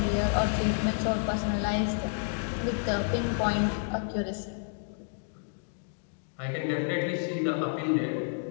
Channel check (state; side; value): silent; right; digital silence